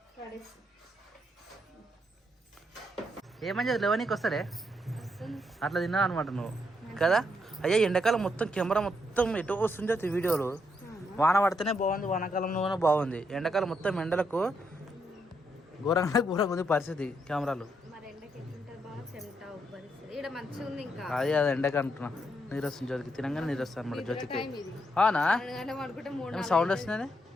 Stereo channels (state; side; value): normal; both; correlation 0.78